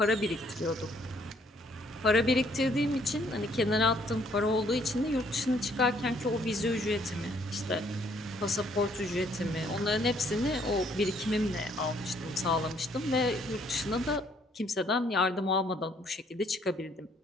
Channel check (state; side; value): normal; both; correlation 0.65